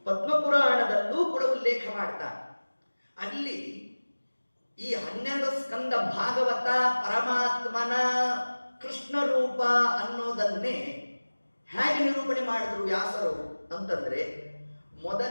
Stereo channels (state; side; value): inverted; both; correlation -1.00